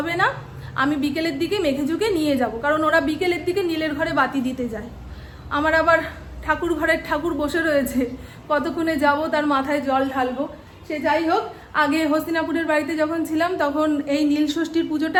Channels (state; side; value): identical; both; correlation 1.00